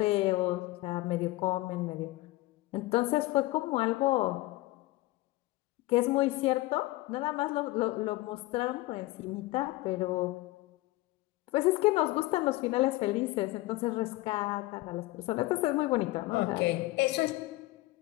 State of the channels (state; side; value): quieter; right; 19.3 dB